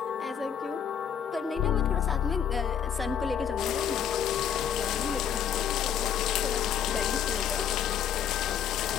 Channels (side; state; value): right; quieter; 8.5 dB